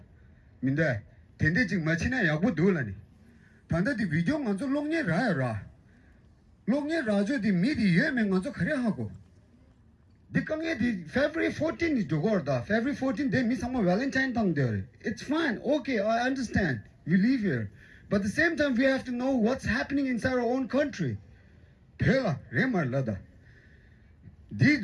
minde tende jing machina yabu dolani tanda di video nganzo longne ra longne rajo di midi yeme nganzo khare hago the February 14 is Jogorda. February 14 they miss some Valentine tongue there. It's fine, okay, I understand. We live here. But at the same time we have to know what's happening inside our own country. Pela, Remar Lada. The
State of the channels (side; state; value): both; identical; correlation 1.00